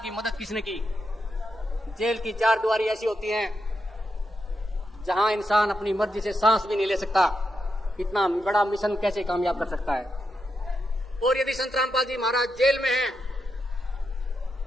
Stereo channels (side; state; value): both; normal; correlation 0.85